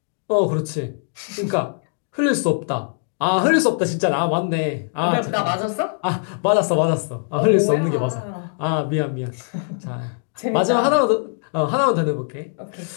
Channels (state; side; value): silent; right; digital silence